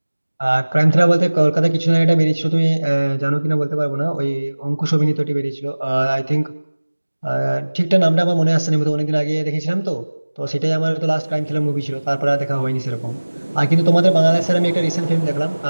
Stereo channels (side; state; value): both; inverted; correlation -1.00